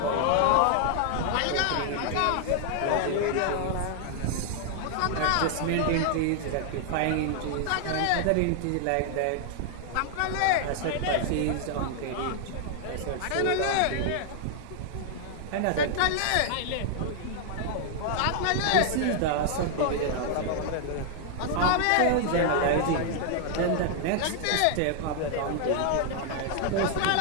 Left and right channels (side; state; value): both; different; correlation 0.00